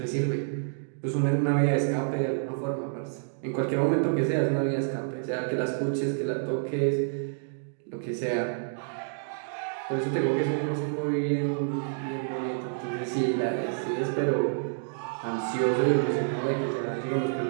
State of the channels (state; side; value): silent; left; digital silence